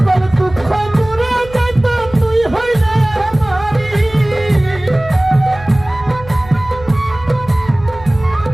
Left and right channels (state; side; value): noise; right; hum, 17 dB below the sound